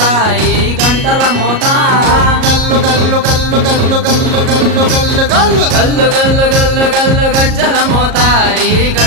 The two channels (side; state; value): left; late; 37 ms